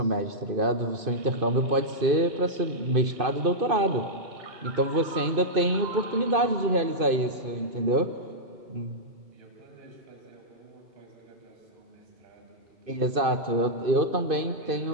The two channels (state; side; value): late; left; 2.5 ms